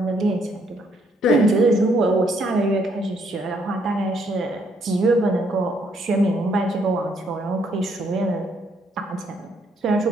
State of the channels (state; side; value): normal; both; correlation 0.70